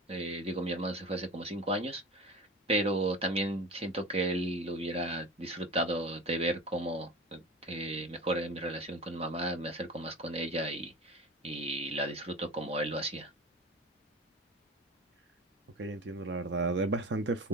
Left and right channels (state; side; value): normal; both; correlation 0.34